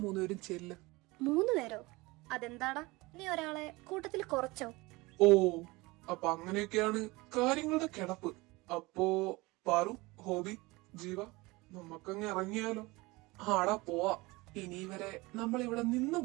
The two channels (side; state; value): left; quieter; 22.7 dB